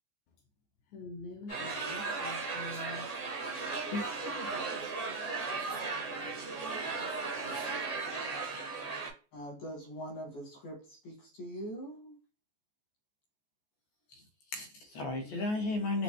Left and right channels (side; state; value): right; late; 14 ms